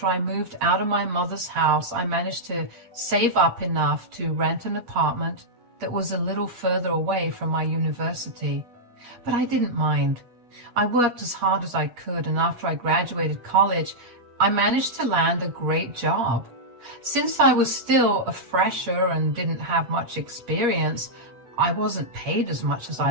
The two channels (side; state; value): left; late; 8.4 ms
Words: I moved out of my mother's house, I managed to save up enough to rent an apartment that was a little further away from my university. But I didn't mind. I worked as hard as I could, and after I graduated college, I managed to land a great job. Since I was still a fresher and didn't have much experience, I wasn't paid as much as